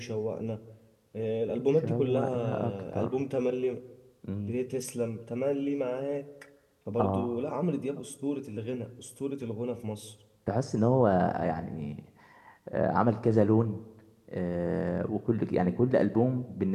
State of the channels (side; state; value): both; identical; correlation 1.00